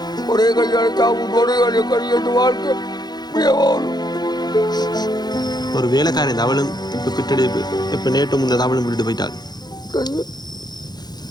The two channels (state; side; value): late; right; 0.20 ms